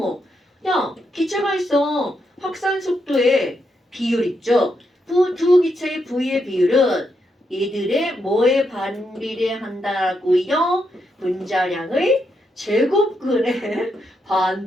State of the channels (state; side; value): normal; both; correlation 0.81